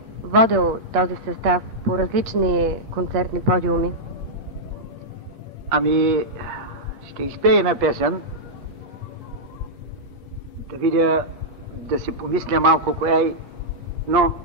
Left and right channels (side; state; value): left; late; 8.5 ms